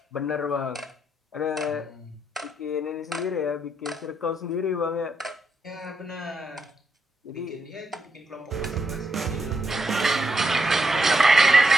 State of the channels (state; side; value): normal; both; correlation 0.81